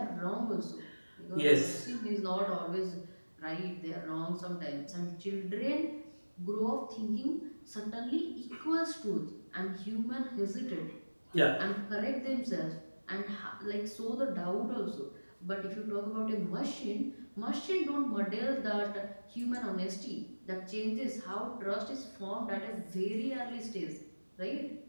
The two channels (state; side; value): inverted; both; correlation -1.00